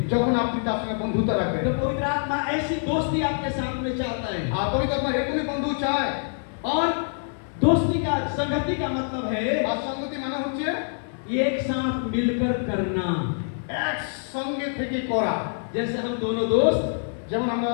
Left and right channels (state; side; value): silent; right; digital silence